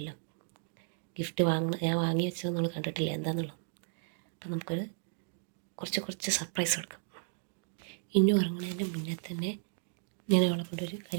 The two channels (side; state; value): left; silent; digital silence